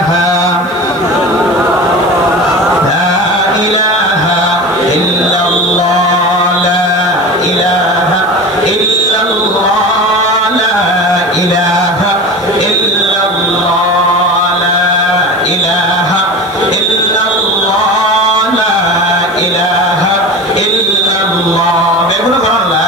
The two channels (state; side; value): noise; left; hiss, 27 dB below the sound